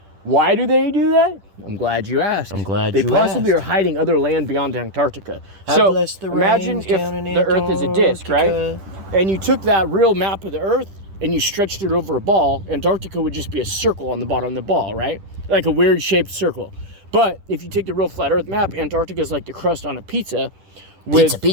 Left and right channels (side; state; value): left; late; 10 ms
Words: Why do they do that? I'm glad you asked. They possibly are hiding other land beyond Antarctica. So imagine if the earth is a disc, right? And you took that real map of the earth and you stretched it over a ball. Antarctica would just be a circle on the bottom of the ball, right? Like a weird shaped circle. But if you take the real flat earth map, Antarctica is like the crust on a pizza, with